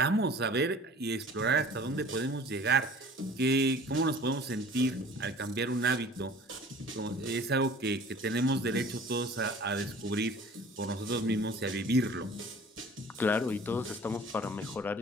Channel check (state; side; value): normal; both; correlation 0.46